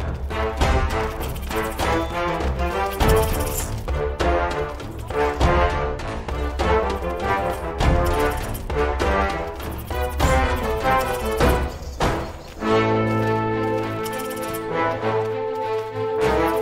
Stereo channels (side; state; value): both; identical; correlation 1.00